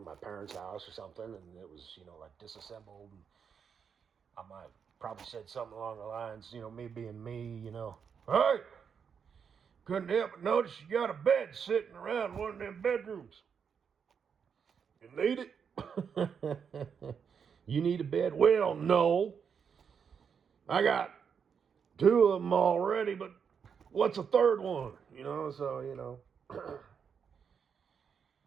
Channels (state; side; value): quieter; left; 6.8 dB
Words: my parents' house or something, and it was, like disassembled. And I might probably said something along the lines, me being me, hey, couldn't help but notice you got a bed sitting around one of them bedrooms. You need it? You need a bed? Well, no. I got two of them already, but what's a third one? So.